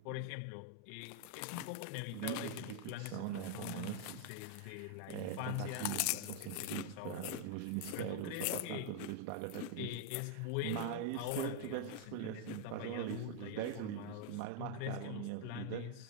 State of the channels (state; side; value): different; both; correlation 0.00